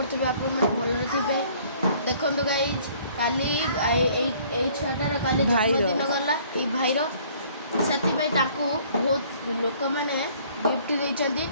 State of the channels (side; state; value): both; inverted; correlation -0.57